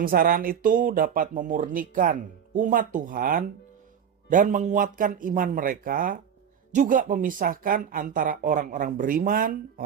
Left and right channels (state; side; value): quieter; left; 8.1 dB